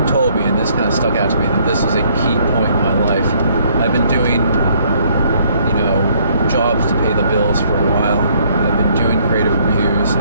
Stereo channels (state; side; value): inverted; both; correlation -0.65